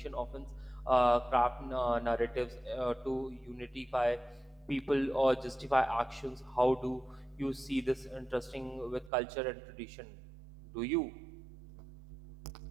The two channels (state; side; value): drops out; left; at 9.1 s